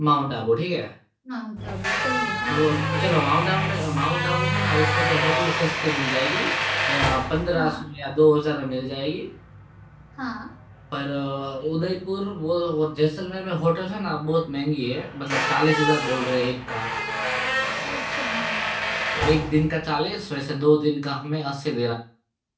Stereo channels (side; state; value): both; identical; correlation 1.00